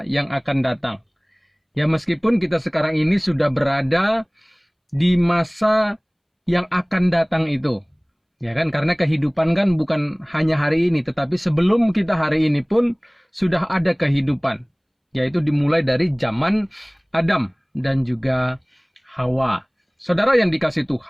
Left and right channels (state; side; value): identical; both; correlation 1.00